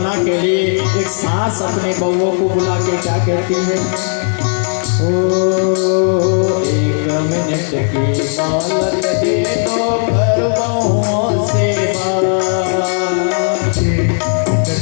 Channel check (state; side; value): silent; right; 70 dB below the other